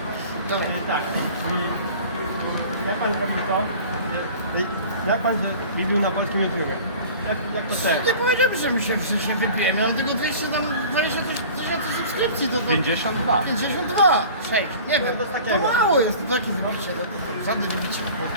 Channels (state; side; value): inverted; both; correlation -0.43